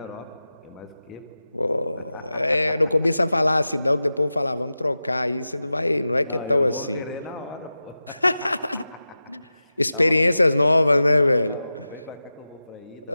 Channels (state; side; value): inverted; both; correlation -0.94